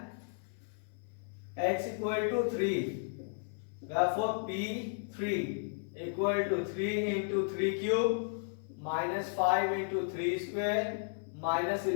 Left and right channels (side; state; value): right; silent; 55 dB below the other